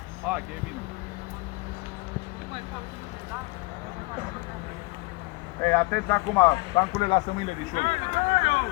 Hai, că e bine. Ei, atent acum, Stancule, lasă mâinile de șold.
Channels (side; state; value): right; quieter; 26.1 dB